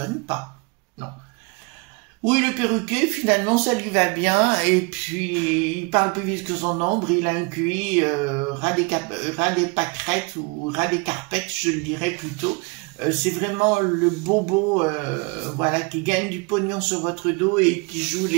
pas, non. Oui, le perruquier, finalement, ça lui va bien, et puis, il parle plus vite que son ombre, il a un QI ras des pâquerettes, ou ras des carpettes, je le dirais plutôt, c'est vraiment le bobo, voilà, qui gagne du pognon sur votre dos et qui joue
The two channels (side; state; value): left; quieter; 29.7 dB